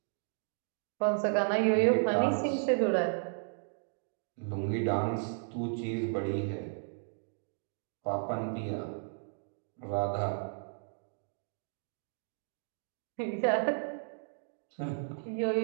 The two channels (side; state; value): left; silent; digital silence